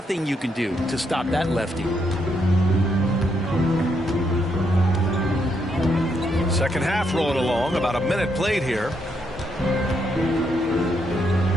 you can do to stop that lefty. Second half rolling along. About a minute played here.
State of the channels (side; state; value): both; normal; correlation 0.77